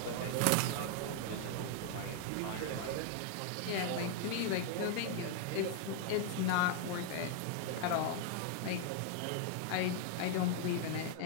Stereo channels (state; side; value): different; both; correlation 0.00